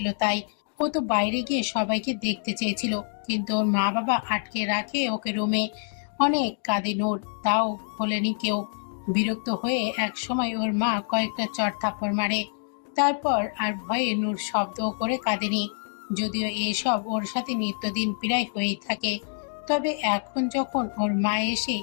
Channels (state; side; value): silent; right; 61 dB below the other